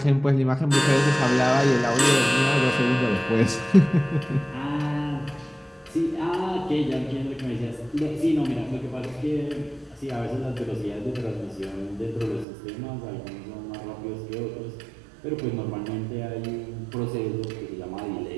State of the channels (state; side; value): drops out; left; at 12.5 s